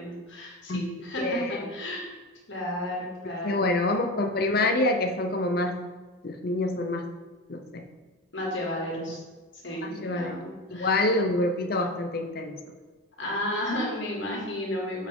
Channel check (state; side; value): normal; both; correlation 0.24